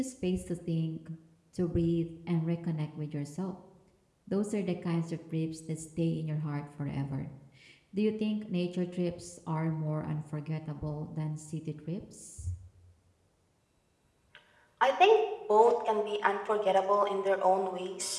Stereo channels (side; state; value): both; identical; correlation 1.00